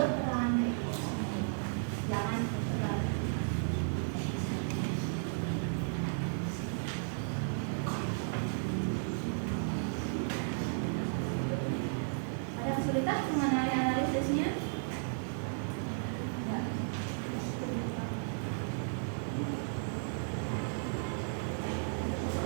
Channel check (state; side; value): silent; left; digital silence